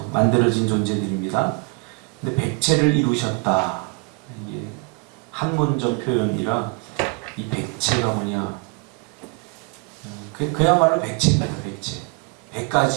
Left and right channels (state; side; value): quieter; left; 31.8 dB